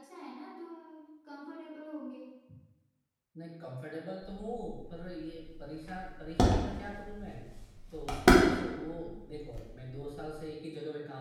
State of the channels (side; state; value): both; identical; correlation 1.00